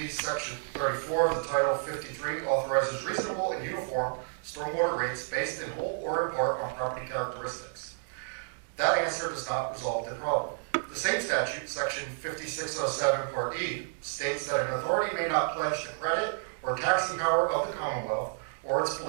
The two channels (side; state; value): left; silent; digital silence